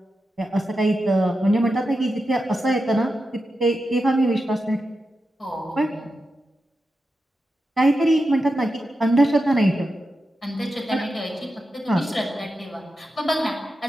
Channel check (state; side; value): normal; both; correlation 0.90